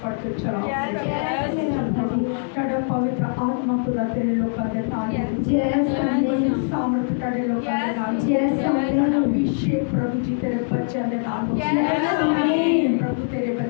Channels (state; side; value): silent; right; digital silence